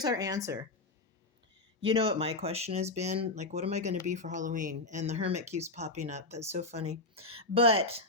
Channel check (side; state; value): right; quieter; 3.0 dB